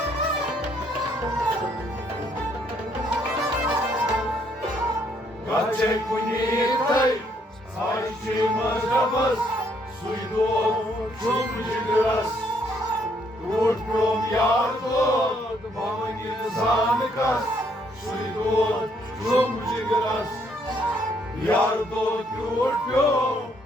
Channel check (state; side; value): normal; both; correlation 0.69